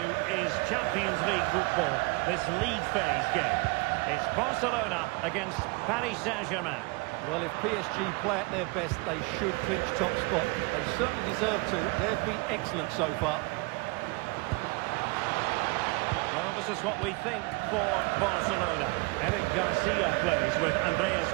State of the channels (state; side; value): quieter; left; 27.3 dB